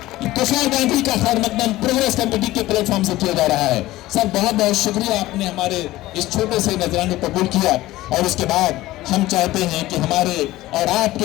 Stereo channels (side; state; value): right; quieter; 17.0 dB